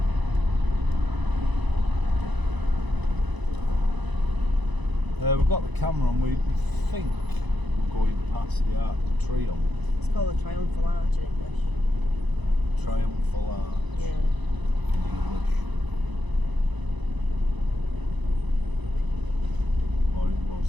We've got the camera on. We think we're going past the Arc de Triomphe. It's called a triumphal arch in English. Triumphal Arch. Yeah. In English. Or what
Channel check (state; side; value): late; left; 1.0 ms